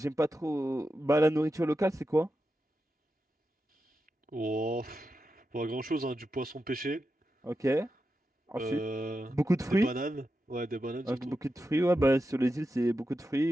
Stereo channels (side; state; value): both; normal; correlation 0.89